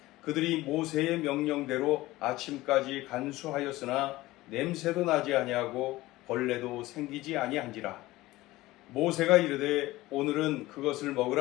그들이 모세의 명령대로 아침까지 간수하였으나 냄새도 나지 아니하고 벌레도 생기지 아니한지라. 모세가 이르되 오늘은 그것을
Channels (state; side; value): quieter; right; 18.2 dB